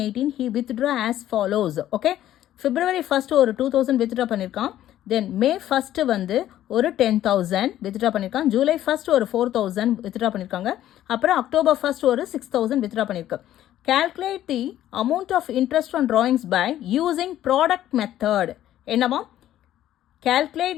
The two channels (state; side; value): quieter; right; 12.6 dB